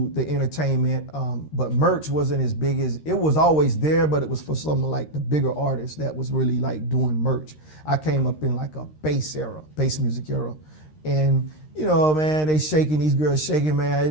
the entertainment, but merch wasn't as big as, it was always there, but it was for some of like the bigger artists that was really like doing merch. I came up in like a bass music era. And, you know, man, these girls shaking, man.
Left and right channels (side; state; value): right; late; 13 ms